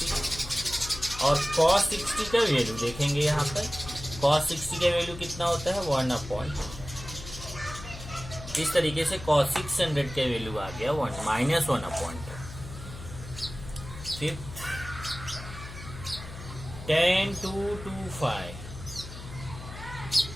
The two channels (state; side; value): noise; left; hum, 12 dB below the sound